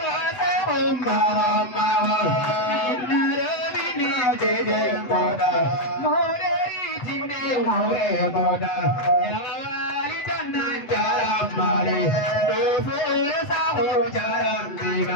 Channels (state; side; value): late; right; 7.9 ms